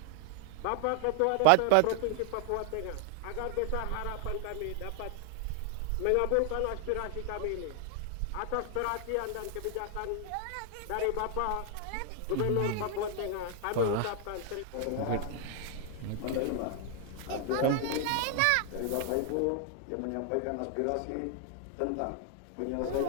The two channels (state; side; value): different; both; correlation 0.00